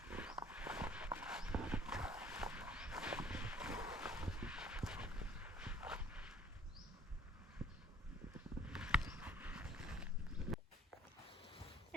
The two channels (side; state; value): both; normal; correlation 0.55